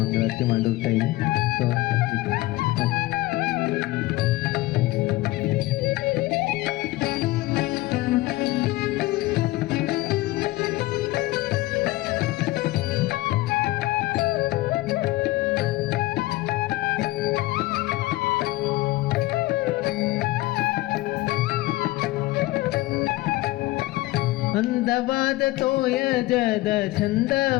ಮಂಗಳಾರತಿ ಮಾಡೋ ಟೈಮ್. ಸೊ ಅಂದವಾದ ತೋಯಜದ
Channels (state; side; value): quieter; right; 18.8 dB